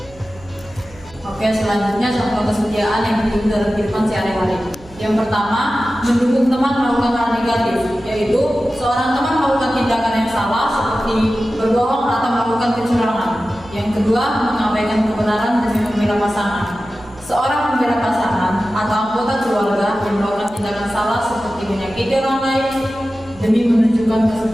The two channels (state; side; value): noise; right; hum, 22 dB below the sound